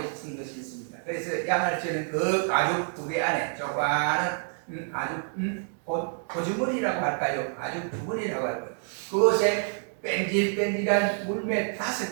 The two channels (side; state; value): left; silent; 57 dB below the other